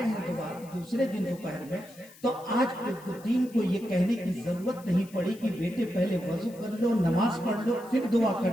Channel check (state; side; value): noise; left; hiss, 23 dB below the sound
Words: ہیں دوسرے دن دوپہر میں تو آج قطبالدین کو یہ کہنے کی ضرورت نہیں پڑی کہ بیٹے پہلے وضو کر لو, نماز پڑھ لو, پھر دعا